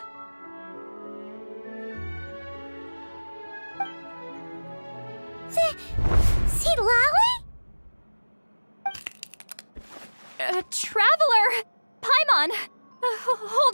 See Lolly? Traveler! Paimon!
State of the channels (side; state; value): both; inverted; correlation -1.00